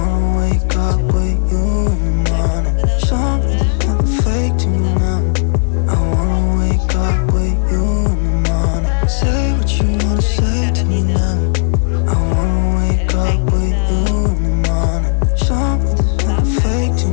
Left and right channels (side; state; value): right; silent; digital silence